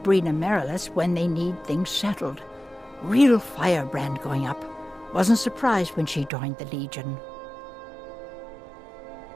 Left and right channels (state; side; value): drops out; left; at 6.3 s